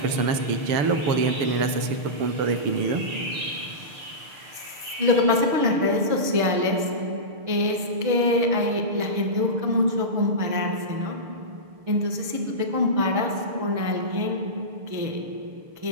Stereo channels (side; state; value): left; late; 6.6 ms